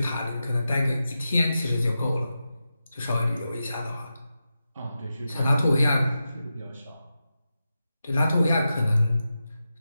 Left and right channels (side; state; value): both; inverted; correlation -0.91